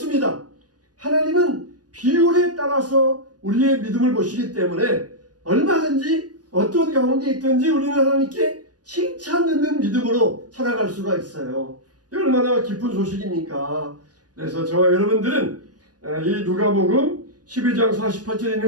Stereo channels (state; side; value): late; left; 0.69 ms